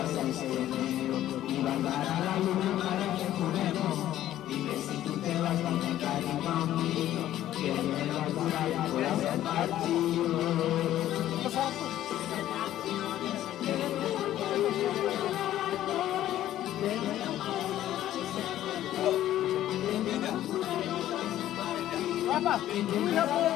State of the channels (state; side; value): quieter; right; 12.9 dB